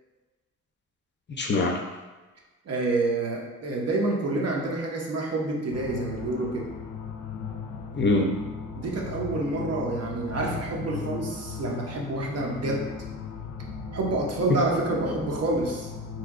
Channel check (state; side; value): normal; both; correlation 0.31